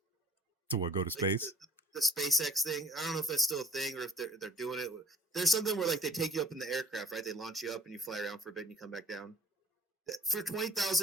To what, go to space? Like the SpaceX thing. I don't know if that's still a thing or if they're doing it. There's something where like they take you up in the aircraft, right? They launch you up and you fly around for a bit and you come back down. For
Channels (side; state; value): both; normal; correlation 0.51